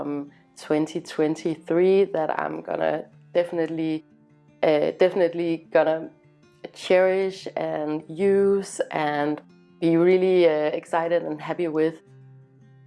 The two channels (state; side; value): identical; both; correlation 1.00